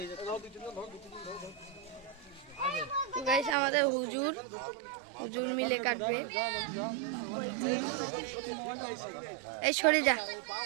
আমাদের হুজুর মিলে কাটবে। এই সরে যা,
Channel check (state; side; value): drops out; left; at 3.6 s